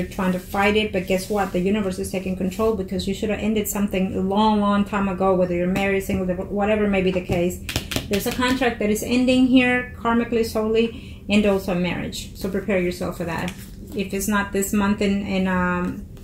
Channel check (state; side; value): identical; both; correlation 1.00